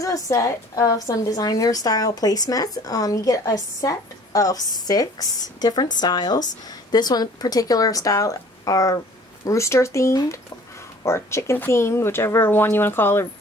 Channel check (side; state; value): both; normal; correlation 0.51